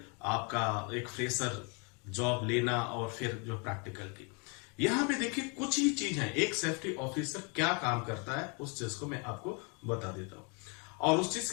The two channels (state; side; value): quieter; right; 34.3 dB